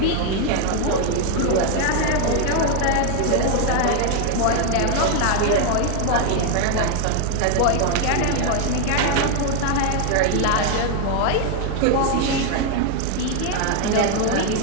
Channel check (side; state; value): both; different; correlation 0.01